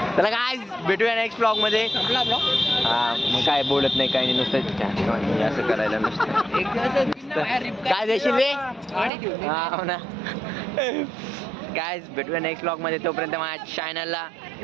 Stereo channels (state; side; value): drops out; left; at 9.1 s